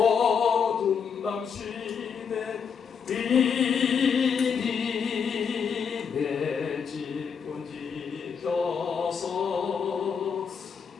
밤 시내 비니 내 집은 지켜서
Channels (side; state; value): right; quieter; 6.6 dB